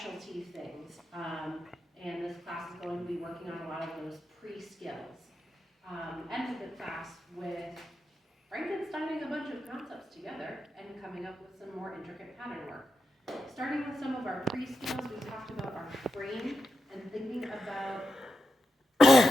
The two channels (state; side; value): normal; both; correlation 0.87